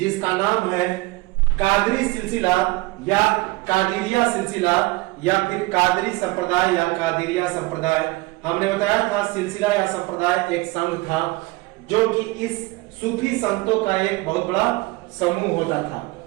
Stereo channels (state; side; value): quieter; left; 22.0 dB